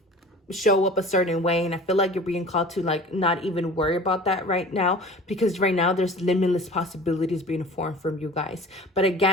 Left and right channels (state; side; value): normal; both; correlation 0.42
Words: show up a certain way. And I feel like you're being called to like not even worry about that right now, because right now there's limitless possibilities being formed from you guys. But